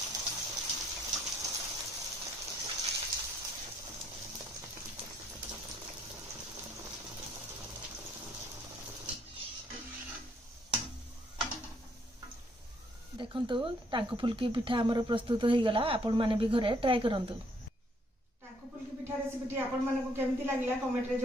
देखंतु टांकु फुलकी पिठा हमर प्रस्तुत हो गला। आपण माने भी घरे ट्राई करंतु। टांकु फुलकी पिठा रेसिपी आपण माने को केमती लागिला कमेंट रे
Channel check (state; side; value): normal; both; correlation 0.68